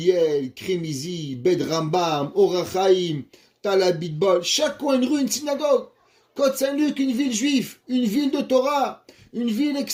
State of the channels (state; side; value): identical; both; correlation 1.00